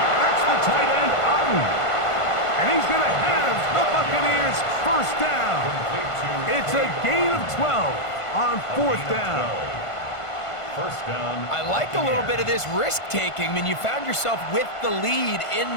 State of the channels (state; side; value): late; right; 1.5 ms